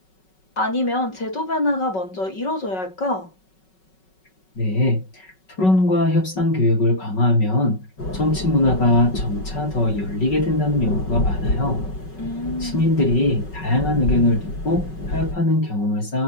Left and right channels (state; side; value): late; right; 5.4 ms